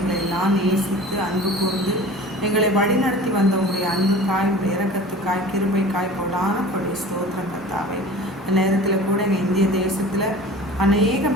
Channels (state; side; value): normal; both; correlation 0.40